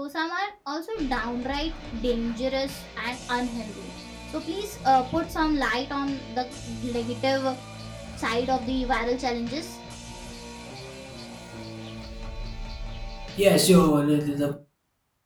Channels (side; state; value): both; identical; correlation 1.00